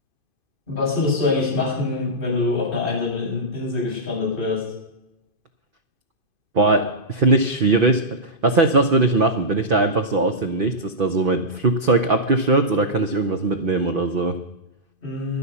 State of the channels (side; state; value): left; late; 2.5 ms